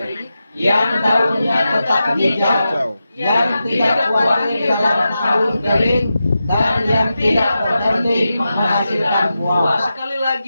yang daunnya tetap hijau, yang tidak khawatir dalam tahun kering, dan yang tidak berhenti menghasilkan buah. Sekali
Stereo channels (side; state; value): both; inverted; correlation -0.91